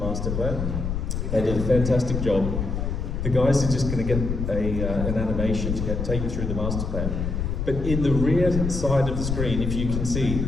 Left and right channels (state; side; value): noise; left; rumble, 2 dB below the sound